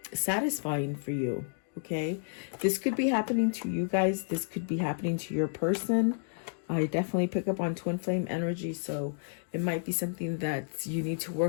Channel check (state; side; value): silent; right; digital silence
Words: satisfying for you. Okay, this could be happening to you guys. This could be happening to your person. I definitely pick up on twin flame energy, so it might be something that you need to